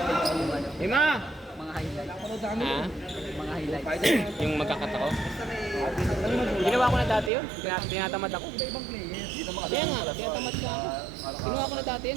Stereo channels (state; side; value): drops out; left; at 7.3 s